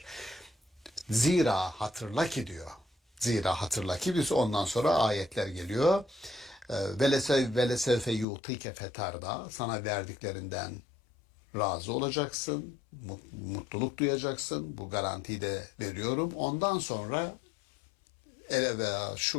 Zira hatırla ki diyor. Zira hatırla ki biz ondan sonra ayetler geliyor. Velesevfe yutike fetarda. Sana verdiklerinden razı olacaksın, mutluluk duyacaksın. Bu garantiyi de veriyorum. Ondan sonra ele veya şu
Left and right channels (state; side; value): drops out; right; at 8.2 s